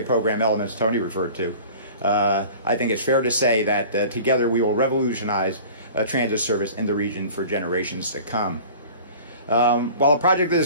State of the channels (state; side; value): inverted; both; correlation -0.43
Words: program elements Tony referred to, I think it's fair to say that together we will revolutionize transit service in the region for generations to come. While a project of